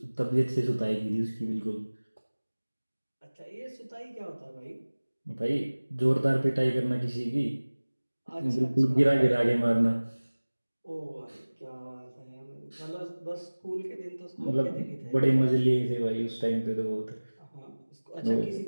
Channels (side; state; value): both; inverted; correlation -1.00